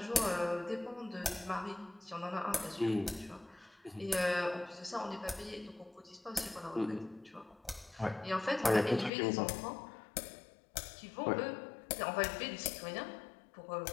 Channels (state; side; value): drops out; right; at 9.1 s